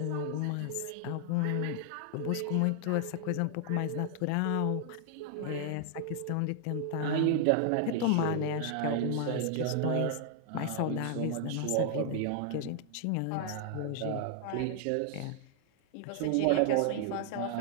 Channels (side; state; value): both; different; correlation 0.00